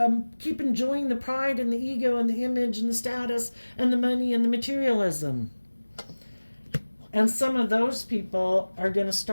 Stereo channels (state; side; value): inverted; both; correlation -1.00